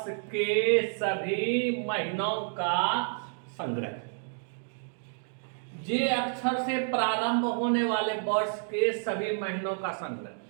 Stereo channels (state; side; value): silent; left; digital silence